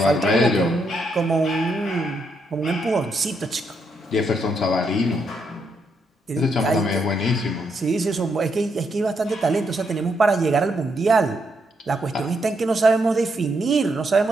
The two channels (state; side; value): normal; both; correlation 0.78